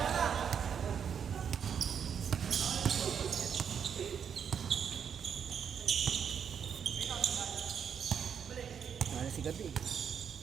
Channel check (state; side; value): quieter; left; 7.6 dB